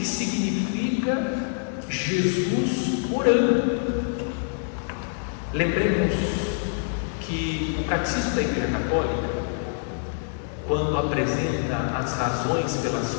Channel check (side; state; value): right; silent; digital silence